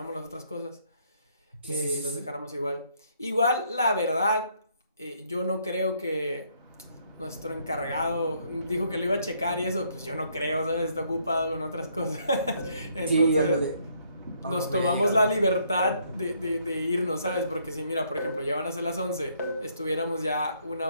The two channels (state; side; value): inverted; both; correlation -0.69